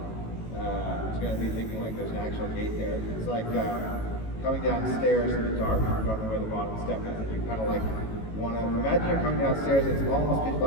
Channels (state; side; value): late; right; 18 ms